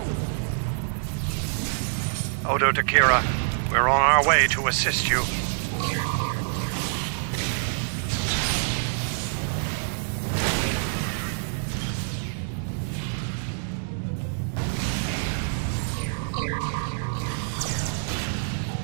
Odo Takira, we're on our way to assist you.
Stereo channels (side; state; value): left; silent; digital silence